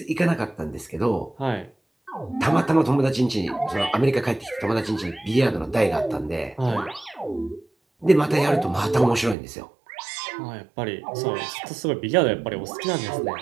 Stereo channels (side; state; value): left; drops out; at 9.3 s